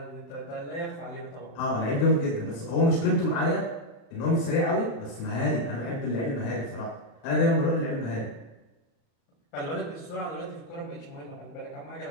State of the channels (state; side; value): late; right; 35 ms